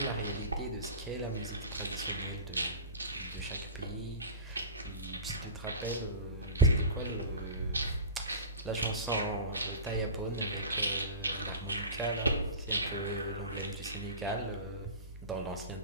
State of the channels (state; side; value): inverted; both; correlation -0.31